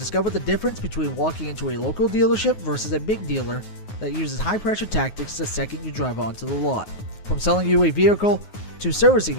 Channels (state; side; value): late; right; 9.4 ms